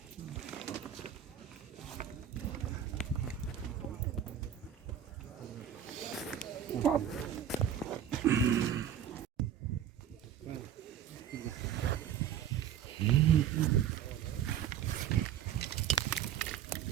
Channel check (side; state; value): left; quieter; 9.3 dB